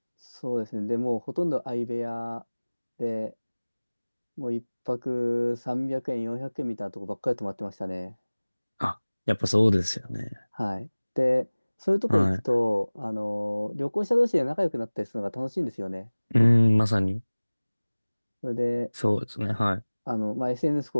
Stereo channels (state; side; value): inverted; both; correlation -1.00